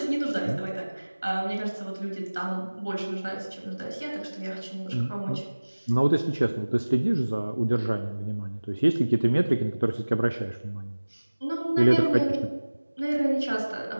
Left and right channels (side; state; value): both; inverted; correlation -1.00